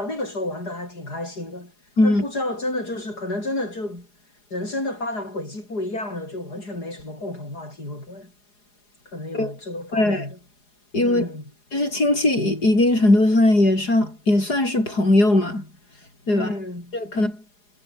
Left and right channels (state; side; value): late; right; 4.8 ms